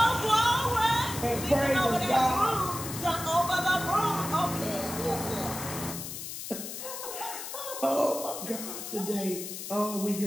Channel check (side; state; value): left; noise; hiss, 8 dB below the sound